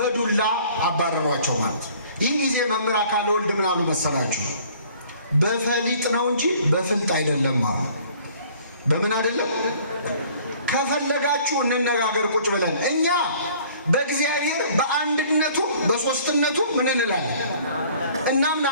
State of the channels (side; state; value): both; inverted; correlation -0.54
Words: አባረሯቸው ማለት ነው። ይህ ጊዜ መምህር አካለ ወልድ ምን አሉ መሰላችሁ? በፈሊጥ ነው እንጂ በፍልጥ አይደለም አሉ። በምን አይደለም? ከፈለጋችሁ እንነጋገር ቁጭ ብለን። እኛ በእግዚአብሔር በአንድነቱ በሶስትነቱ ምን እንላለን?